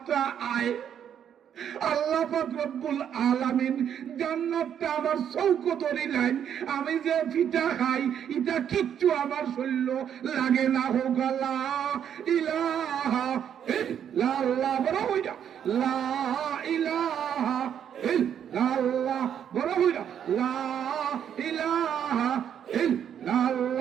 আয় আল্লাহ পাক রব্বুল আলামিন জান্নাতটা আমার চৌকতরি লাইন আমি যে ফিটা খাই এটা কিচ্ছু আমার শরীর লাগে না হোক লা ইলাহা ইল্লাল্লাহ বড় হইয়া লা ইলাহা ইল্লাল্লাহ বড় হইয়া লা ইলাহা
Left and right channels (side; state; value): left; quieter; 9.0 dB